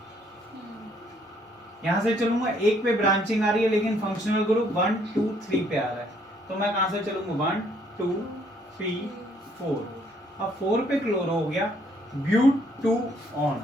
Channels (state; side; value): normal; both; correlation 0.66